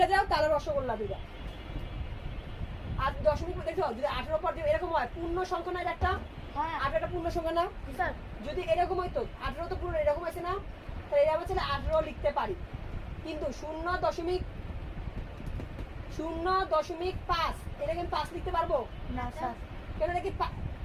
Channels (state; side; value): identical; both; correlation 1.00